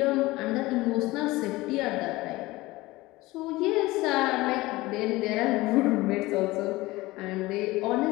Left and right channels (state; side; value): quieter; right; 19.8 dB